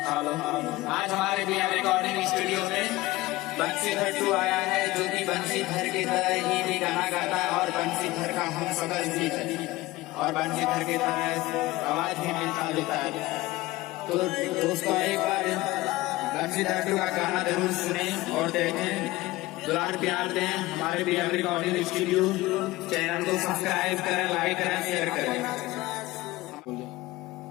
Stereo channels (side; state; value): right; quieter; 18.9 dB